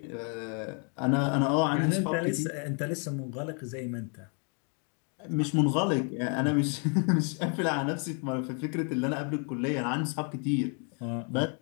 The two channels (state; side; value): quieter; right; 39.4 dB